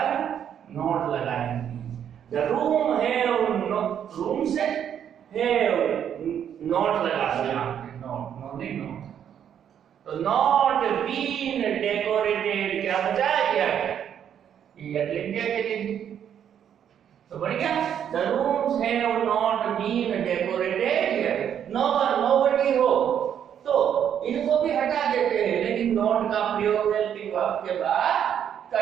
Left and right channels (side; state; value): left; quieter; 9.1 dB